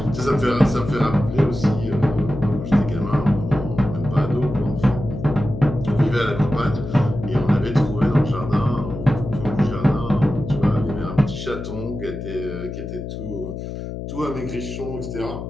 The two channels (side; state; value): left; noise; hum, 7 dB below the sound